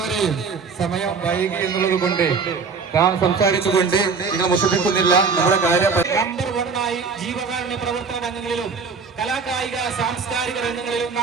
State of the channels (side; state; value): left; quieter; 5.1 dB